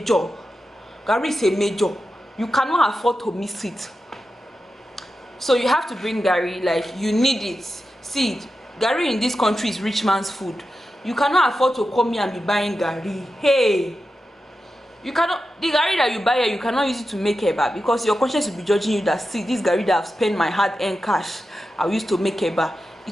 Gari is a major. You cannot afford to miss it, so you have to bring gari. Like, you need it. See, gari in this country is rich man's food. You cannot afford to come here and be buying gari. Hey, you cannot, the gari that you buy here, you cannot use it to make eba, because your conscience will be judging you that, see, this gari that I've spent my hard-earned cash, I used to make eba.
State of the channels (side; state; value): both; normal; correlation 0.91